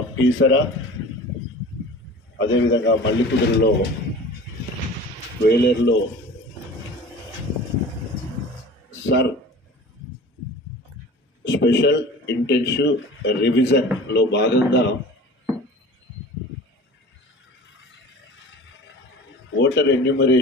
పీసర, అదేవిధంగా మల్లికుదురులో, వేలేరులో సర్ స్పెషల్ ఇంటెన్సివ్ రివిజన్లో భాగంగా ఓటర్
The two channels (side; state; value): both; normal; correlation 0.40